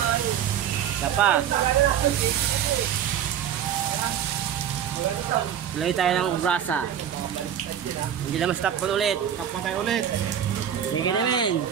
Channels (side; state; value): left; quieter; 9.5 dB